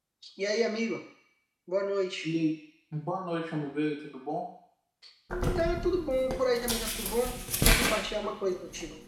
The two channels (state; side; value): identical; both; correlation 1.00